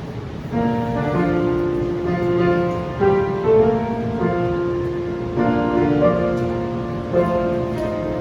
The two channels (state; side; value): identical; both; correlation 1.00